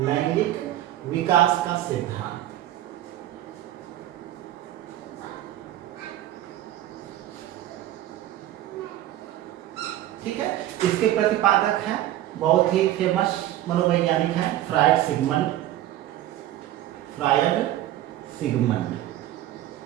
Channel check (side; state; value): left; quieter; 13.7 dB